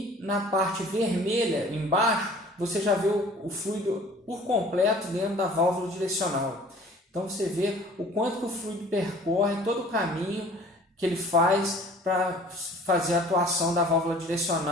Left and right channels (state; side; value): normal; both; correlation 0.49